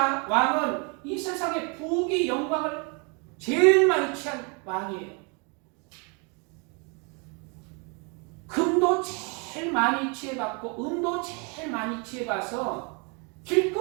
이 세상의 부귀 영광을 제일 많이 취한 왕이에요. 금도 제일 많이 취해봤고 은도 제일 많이 취해봐서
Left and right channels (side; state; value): left; quieter; 33.6 dB